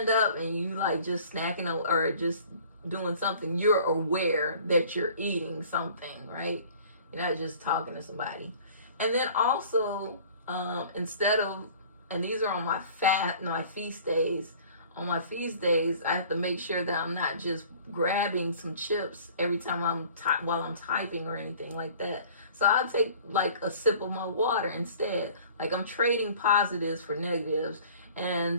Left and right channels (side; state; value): both; inverted; correlation -0.49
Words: up and you like just snacking or just doing something, you're aware that you're eating something, right? You're not just talking to somebody. And then also, instead of, and these are on my feast days. On my feast days, I have to make sure that I'm not just grabbing some chips every time while I'm typing or anything like that. So I'll take like a sip of my water instead. Like I'm trading positives for negatives.